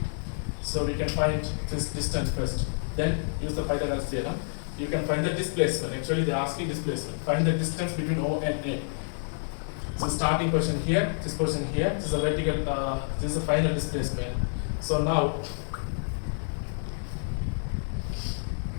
So we can find this distance first. Then use the Pythagoras theorem. You can find the displacement. Actually, they are asking displacement. Find the distance between O and A. So starting position here, this position here. This is a vertical. This is the final displacement. So now,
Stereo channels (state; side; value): silent; right; digital silence